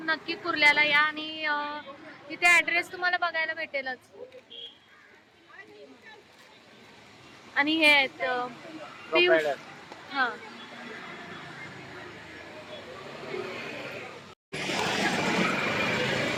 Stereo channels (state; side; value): identical; both; correlation 1.00